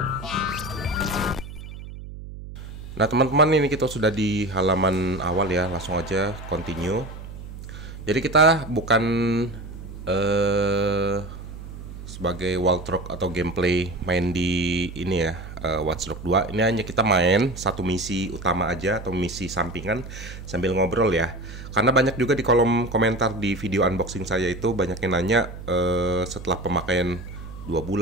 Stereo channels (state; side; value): noise; right; hum, 12 dB below the sound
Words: Nah teman-teman, ini kita sudah di halaman awal ya, langsung aja continue. Jadi kita bukan sebagai walkthrough atau gameplay main di ini ya, Watch Dogs 2. Ini hanya kita main satu misi utama aja atau misi sampingan sambil ngobrol ya. Karena banyak juga di kolom komentar di video unboxing saya itu banyak yang nanya setelah pemakaian 2